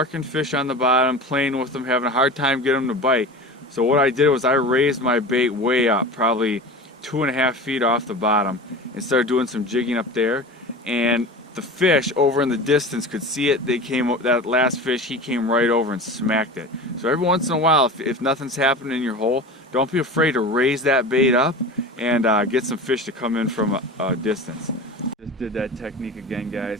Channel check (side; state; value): both; normal; correlation 0.32